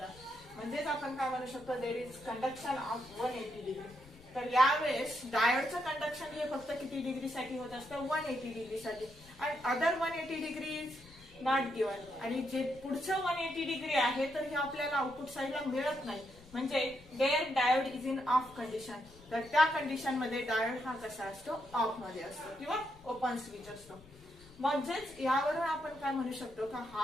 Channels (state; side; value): noise; left; rumble, 23 dB below the sound